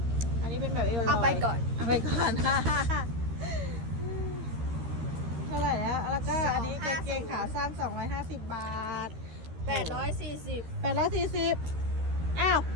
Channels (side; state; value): left; late; 13 ms